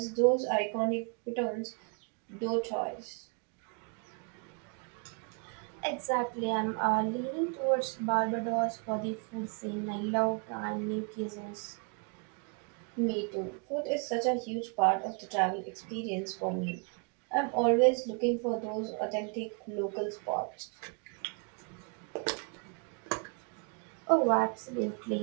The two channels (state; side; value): quieter; left; 37.8 dB